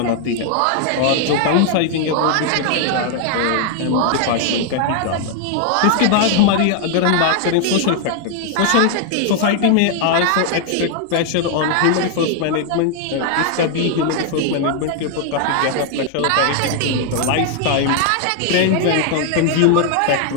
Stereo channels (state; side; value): different; both; correlation 0.00